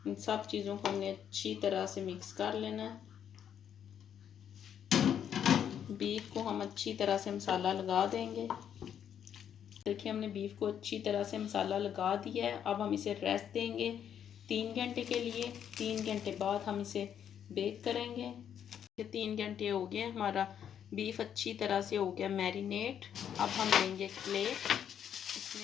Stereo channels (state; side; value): quieter; right; 9.0 dB